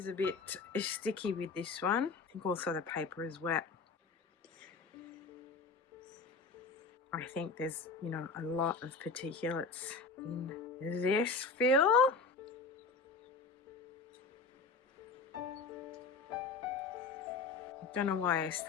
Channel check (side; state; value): right; quieter; 4.3 dB